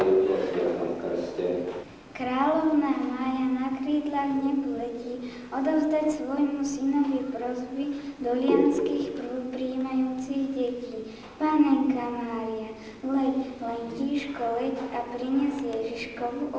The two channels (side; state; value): both; identical; correlation 1.00